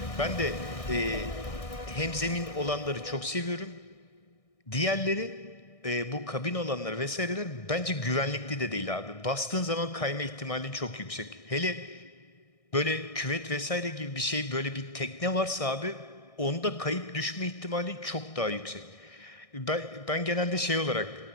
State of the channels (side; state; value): right; late; 1.6 ms